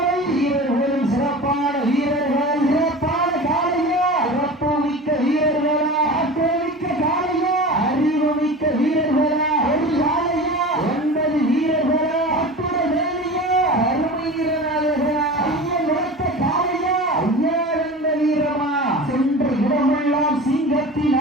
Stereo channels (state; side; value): normal; both; correlation 0.34